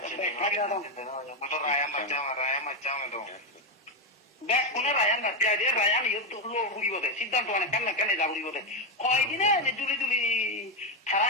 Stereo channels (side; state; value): both; normal; correlation 0.07